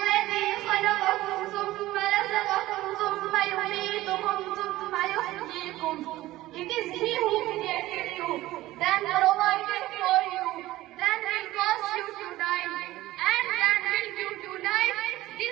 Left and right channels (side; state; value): left; quieter; 16.7 dB